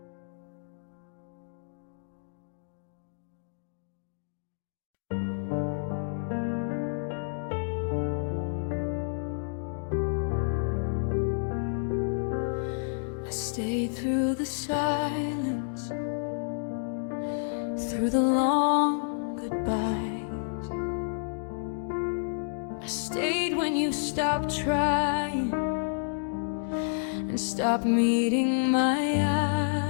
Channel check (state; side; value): silent; right; digital silence